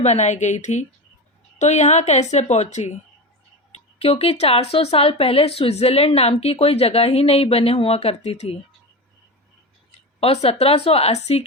बनाई गई थी, तो यहाँ कैसे पहुंची, क्योंकि 400 साल पहले स्विट्जरलैंड नाम की कोई जगह ही नहीं बने हुआ करती थी और 1780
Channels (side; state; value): both; normal; correlation 0.23